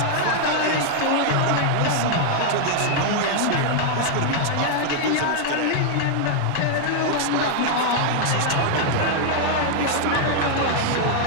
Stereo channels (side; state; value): both; different; correlation 0.00